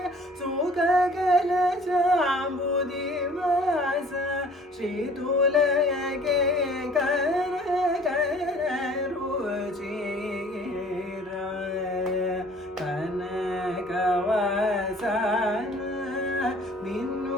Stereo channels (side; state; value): both; normal; correlation 0.51